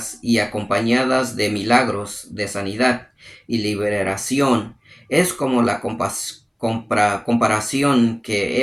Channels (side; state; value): both; identical; correlation 1.00